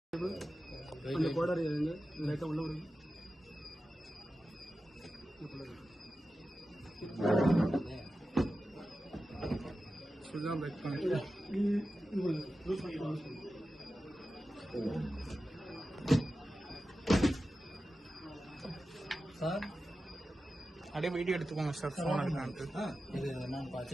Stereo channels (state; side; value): normal; both; correlation 0.93